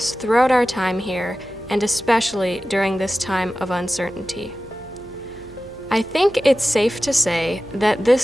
throughout our time here, and especially during this time of uncertainty. I think it's safe to say that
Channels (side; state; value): right; noise; hum, 23 dB below the sound